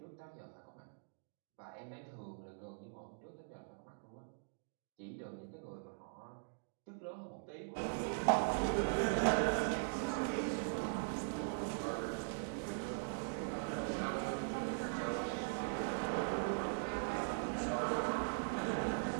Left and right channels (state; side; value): silent; left; digital silence